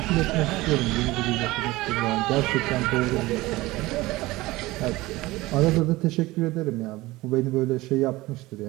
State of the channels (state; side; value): quieter; left; 19.5 dB